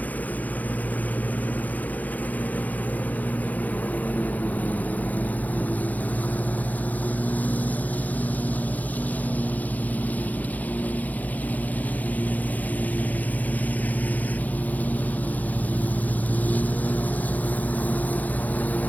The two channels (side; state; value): right; late; 0.080 ms